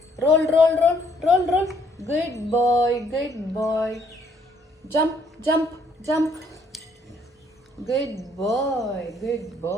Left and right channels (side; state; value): both; normal; correlation 0.66